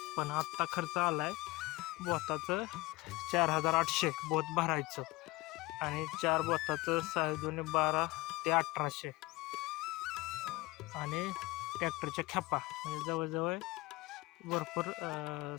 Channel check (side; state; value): right; quieter; 21.6 dB